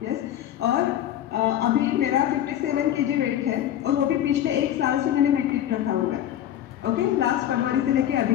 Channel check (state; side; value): quieter; right; 11.4 dB